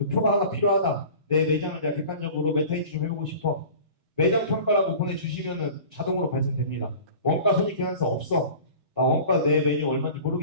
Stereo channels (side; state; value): both; inverted; correlation -0.41